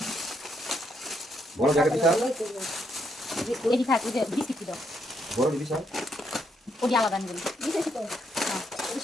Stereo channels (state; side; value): normal; both; correlation 0.76